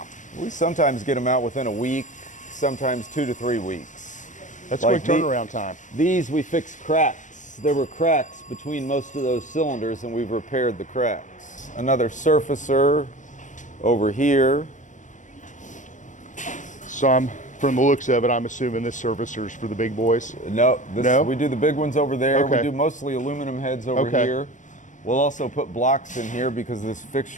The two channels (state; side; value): late; right; 0.36 ms